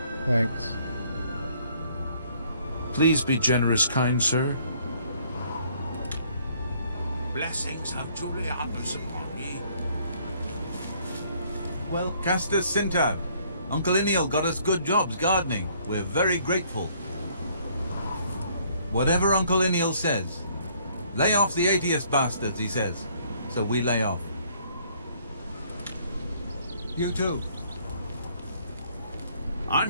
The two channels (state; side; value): inverted; both; correlation -0.63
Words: Thanks. Please be generous, kind sir. Blessings of Julianus upon ye. Well, Castus Sintav, Uncle Iniel got us good jobs gardening. We're very grateful. Whatever Uncle Iniel says. Lay off the atheist bastards, he says. So we lay off. You too.